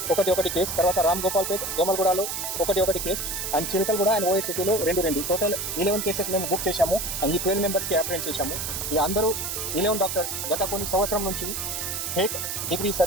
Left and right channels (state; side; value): noise; right; hiss, 3 dB below the sound